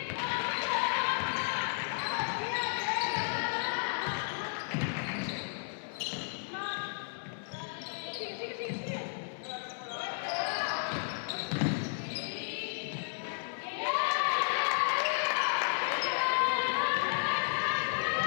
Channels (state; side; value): silent; right; 56 dB below the other